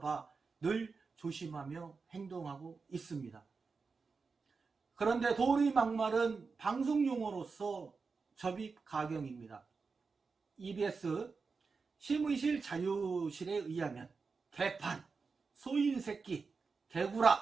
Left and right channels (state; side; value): quieter; left; 4.7 dB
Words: 늘 조심하며 행동하고 있습니다. 그런데 도리 막말은 방송용어로서 접입가경입니다. EBS 심의실 자유실에 의하면 개판, 소인새끼,